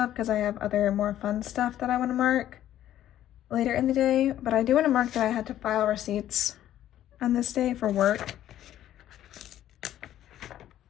because I have other more fun stuff that I want to mark later in the day, but I do want to mark that I had to file receipts on this day for work.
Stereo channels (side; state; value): right; quieter; 12.2 dB